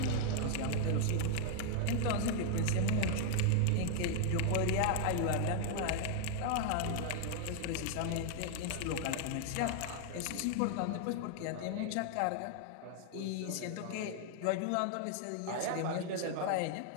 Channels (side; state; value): both; different; correlation 0.00